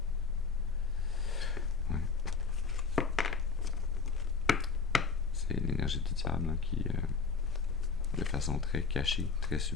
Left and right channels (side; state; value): right; quieter; 4.9 dB